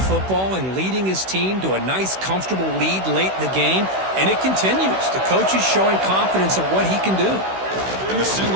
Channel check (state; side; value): late; left; 16 ms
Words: and leading his team to a nice, comfortable lead late in the game, and it continues. The coach is showing confidence of what he can do. And the